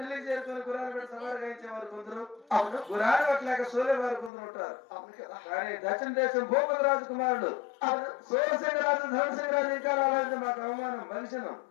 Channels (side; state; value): right; drops out; at 4.3 s